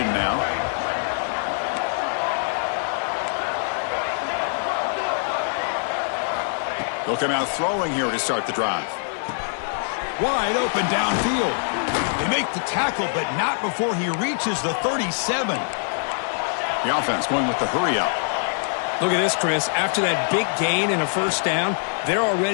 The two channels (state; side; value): silent; right; digital silence